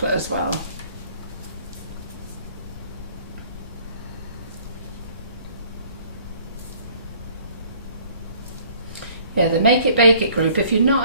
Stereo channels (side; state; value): both; inverted; correlation -0.56